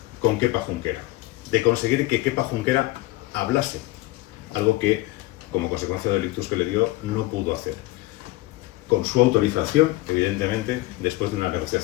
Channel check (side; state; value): right; quieter; 19.1 dB